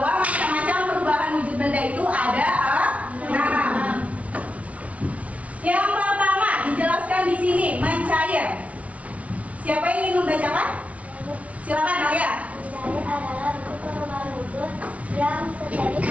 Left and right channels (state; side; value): late; left; 0.066 ms